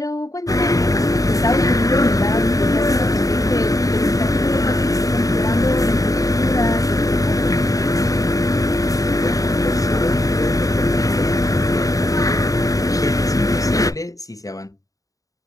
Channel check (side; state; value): right; late; 0.17 ms